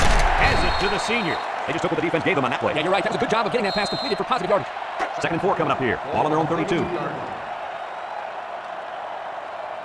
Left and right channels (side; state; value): both; identical; correlation 1.00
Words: it to the senior. They just took what the defense gave them on that play. Yeah, you're right. That was a good job of getting that pass completed for positive yardage. 2nd and 4 coming up here. Ball on their own 32.